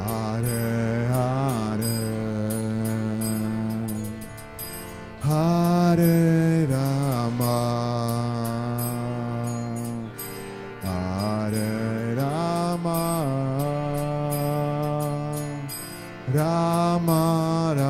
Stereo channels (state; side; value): identical; both; correlation 1.00